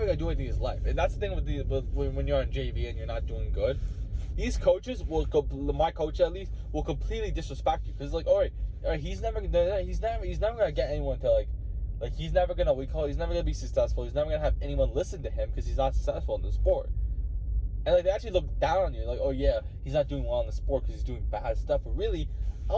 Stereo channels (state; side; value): identical; both; correlation 1.00